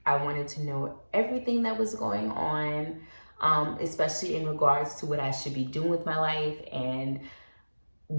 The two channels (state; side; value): inverted; both; correlation -1.00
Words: I wanted to know everything that was going on, especially in regards to what I should be doing with my life and